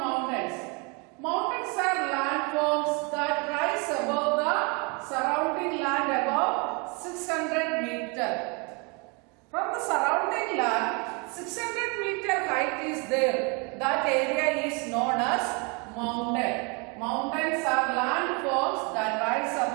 Mountains are landforms that rise above the surrounding land above 600 meters. From the surrounding land, 600 meter height is there. That area is known as mountain. Mountains are landforms that rise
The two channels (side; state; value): left; quieter; 32.0 dB